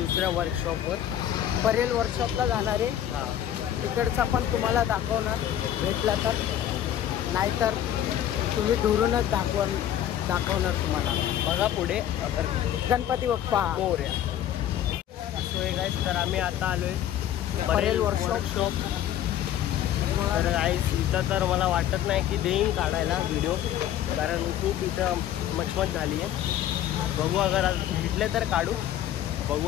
वर्कशॉपवर, परेल वर्कशॉपला जाणार आहे. हां, तिकडचा पण तुम्हाला दाखवणार भेटला तर, नाहीतर तुम्ही दुरूनच दाखवणार तुम्हाला. बघा पुढे अगर Ganpati Bappa Morya. So hey guys, तर आम्ही आता आलोय परेल वर्कशॉप. तर गाईस, इथं तर मला वाटत नाही की देईन काढायला व्हिडिओ, कारण खूप इथं मचमच झाली आहे. बघू, अगर आज भेटले तर काढू. बघू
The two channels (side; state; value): right; quieter; 11.2 dB